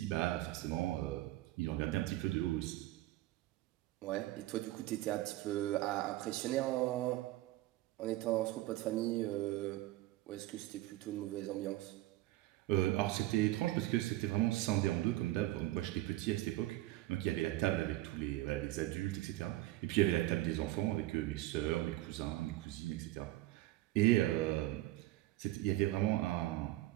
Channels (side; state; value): left; quieter; 17.0 dB